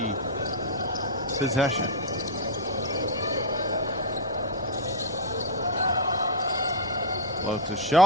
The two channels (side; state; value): both; normal; correlation -0.02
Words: possession. Floats a